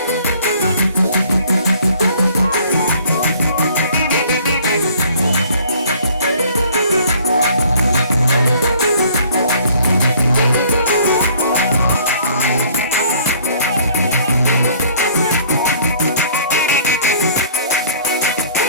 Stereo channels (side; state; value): both; inverted; correlation -0.55